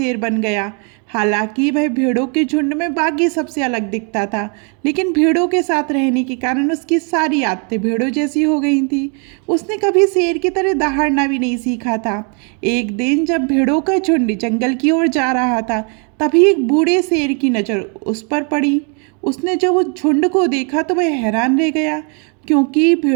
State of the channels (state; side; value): quieter; left; 37.3 dB